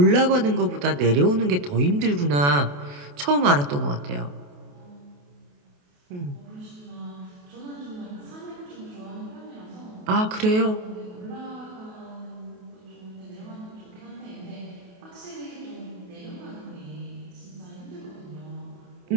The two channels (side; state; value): left; late; 28 ms